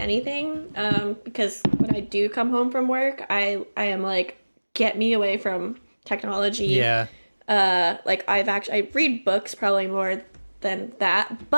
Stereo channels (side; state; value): both; inverted; correlation -1.00